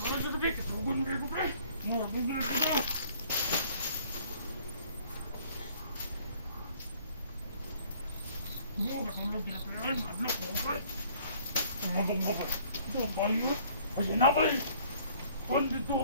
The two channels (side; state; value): both; inverted; correlation -0.57